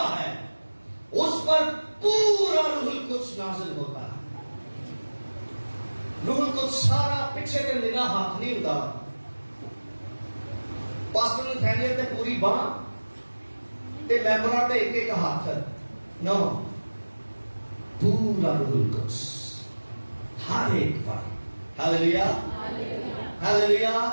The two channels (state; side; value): inverted; both; correlation -1.00